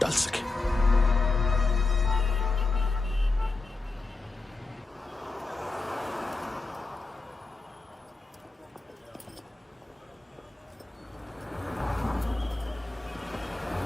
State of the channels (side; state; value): right; quieter; 3.5 dB